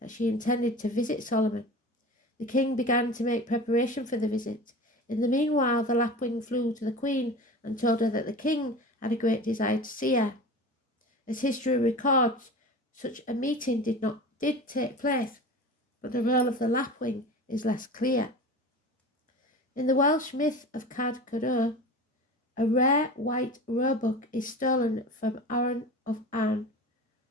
she intended to visit Solomon. The king began to make preparation for the visit. In the meanwhile, the lapwing flew to the queen and told her that the king had a great desire to see her. As history records, such a meeting did take place, but the role of the lapwing is less clear. In the Welsh myth of Cad Codor, a rare white roebuck is stolen from Arran of Arn,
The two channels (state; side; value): normal; both; correlation 0.34